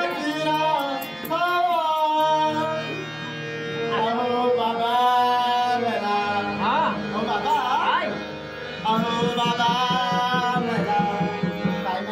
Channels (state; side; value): identical; both; correlation 1.00